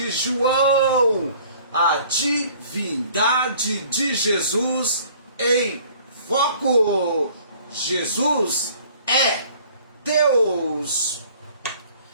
João, a divindade de Jesus em foco. Jesus é Deus.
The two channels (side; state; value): both; inverted; correlation -0.53